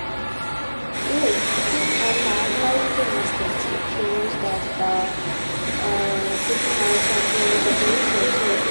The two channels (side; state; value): both; inverted; correlation -1.00